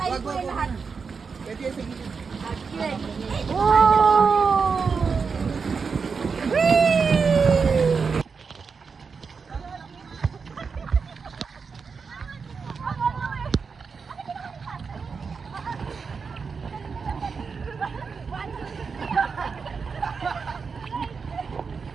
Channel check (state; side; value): quieter; left; 5.3 dB